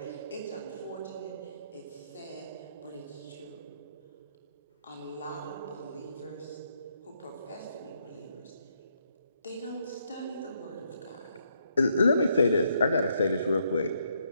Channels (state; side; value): inverted; both; correlation -0.75